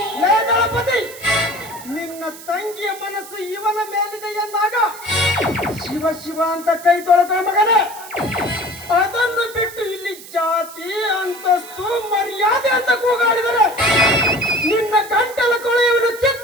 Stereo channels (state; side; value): noise; right; hiss, 16 dB below the sound